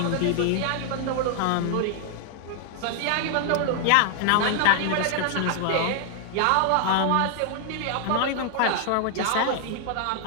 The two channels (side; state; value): both; different; correlation 0.00